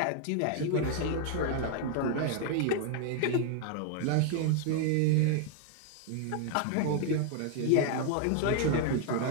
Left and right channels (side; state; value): both; different; correlation 0.00